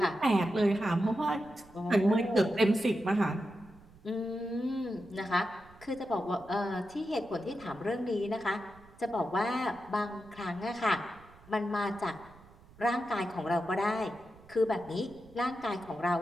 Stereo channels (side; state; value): right; noise; rumble, 24 dB below the sound